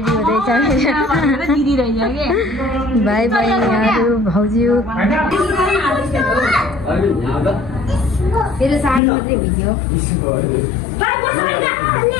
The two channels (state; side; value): drops out; right; at 9.0 s